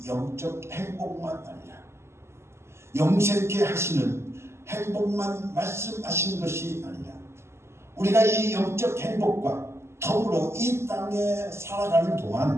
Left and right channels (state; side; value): late; left; 0.13 ms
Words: 영적 행복만 아니라 영생케 하시는 행복만 말씀하신 것이 아니라 우리가 이 영적 행복과 더불어 이 땅에 살아가는